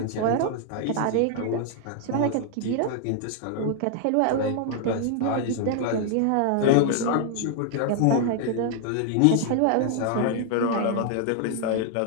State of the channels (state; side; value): different; both; correlation 0.00